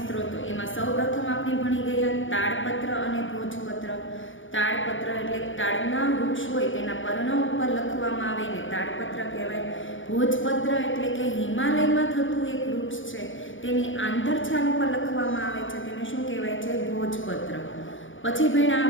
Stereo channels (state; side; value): late; right; 0.57 ms